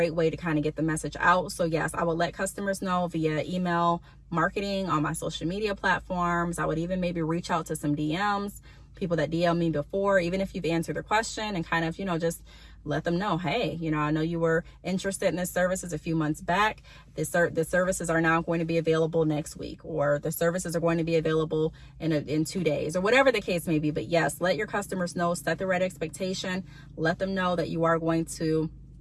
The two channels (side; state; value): both; identical; correlation 1.00